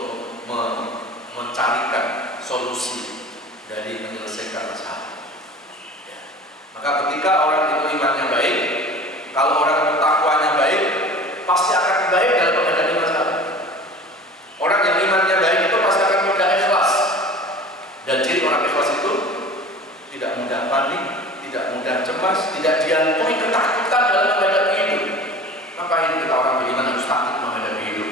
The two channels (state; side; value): normal; both; correlation 0.40